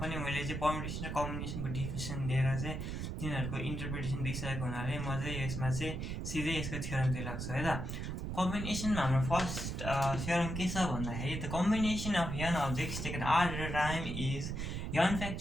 पनि मैले चाहिँ पर्मुटेसन र कम्बिनेसनको डिफिनेसन दिएर चाहिँ तिनीहरूको इन्टरप्रिटेसन दिइसकेको हुनाले म चाहिँ यसमा चाहिँ सिधै यसको थ्योरमतिर लाग्छु है त। कम्बिनेसनमा हाम्रो फर्स्ट थ्योरम के छ भन्दाखेरि the combination of n objects taken r at a time is n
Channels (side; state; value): right; noise; rumble, 4 dB below the sound